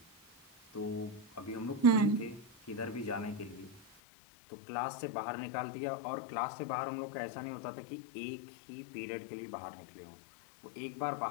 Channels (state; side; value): drops out; right; at 3.8 s